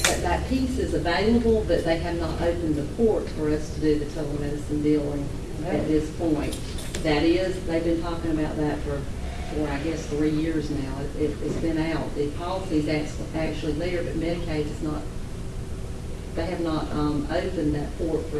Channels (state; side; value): identical; both; correlation 1.00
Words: piece is available, but they have not opened the port for us to do the telemedicine billing at this point. That is, they've been talking about that for I guess 3 years now. It's been out. The policy's actually there, but Medicaid is not. They have not opened that port for